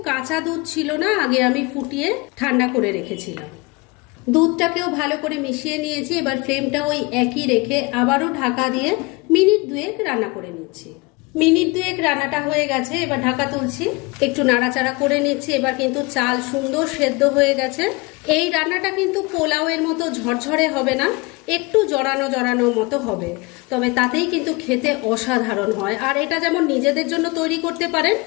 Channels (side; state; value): right; quieter; 25.9 dB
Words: কাঁচা দুধ ছিল না, আগে আমি ফুটিয়ে ঠান্ডা করে রেখেছিলাম। দুধটাকেও ভালো করে মিশিয়ে নিয়েছি। এবার ফ্লেমটা ওই একই রেখে আবারও ঢাকা দিয়ে মিনিট 2 রান্না করে নিচ্ছি। মিনিট 2 রান্নাটা হয়ে গেছে। এবার ঢাকা তুলছি, একটু নাড়াচাড়া করে নিচ্ছি। এবার কিন্তু চাল সুন্দর সেদ্ধ হয়ে গেছে। এই রান্নাটা কিন্তু পোলাওয়ের মতো ঝরঝরে হবে না, একটু জড়ানো জড়ানো মতো হবে, তবে তাতেই কিন্তু খেতে অসাধারণ হয়। আর এটা যেমন নিজেদের জন্য তৈরি করতে পারেন,